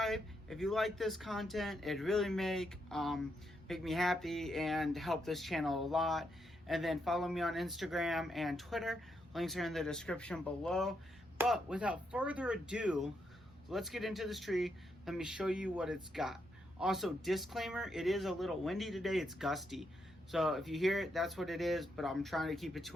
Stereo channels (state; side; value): normal; both; correlation 0.80